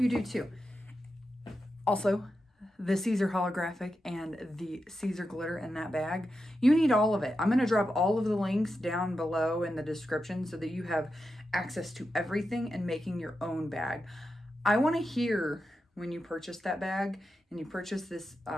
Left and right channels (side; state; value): both; normal; correlation 0.89